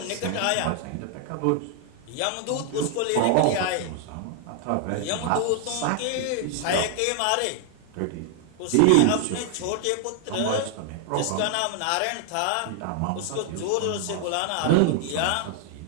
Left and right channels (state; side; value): different; both; correlation 0.00